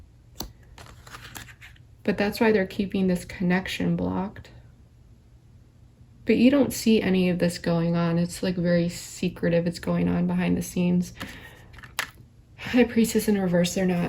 but that's why they're keeping this connection blocked. But you don't see any of this going on. It's like very secretive. It's going on behind the scenes. High Priestess in reverse, they're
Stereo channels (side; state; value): both; identical; correlation 1.00